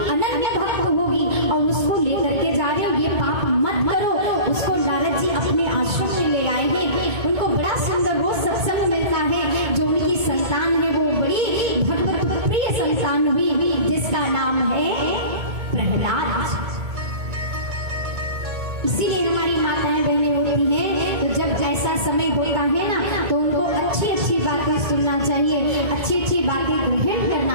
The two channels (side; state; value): left; late; 2.2 ms